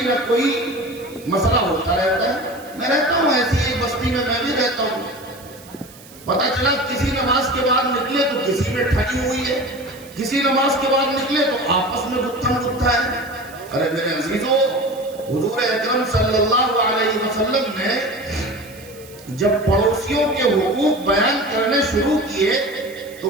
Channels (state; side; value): noise; right; hiss, 21 dB below the sound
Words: کوئی مسئلہ ہوتا رہتا ہے. لگی ہوئی ہے، کسی نماز کے بعد نکلے تو آپس میں گتھم گتھا ہے۔ ارے میرے عزیزو، حضور اکرم صلی اللہ علیہ وسلم نے جب پڑوسیوں کے حقوق بیان کرنے شروع کیے تو